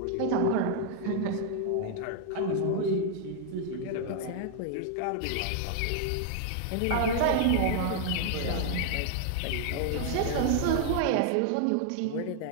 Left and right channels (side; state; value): both; different; correlation 0.00